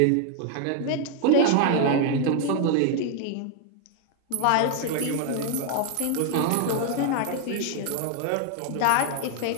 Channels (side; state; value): both; different; correlation 0.00